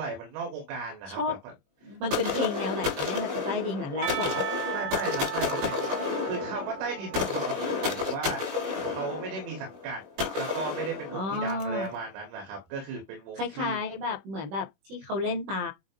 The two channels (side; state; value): left; late; 21 ms